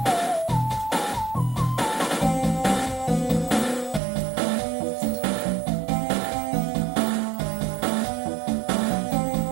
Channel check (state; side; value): drops out; left; at 4.0 s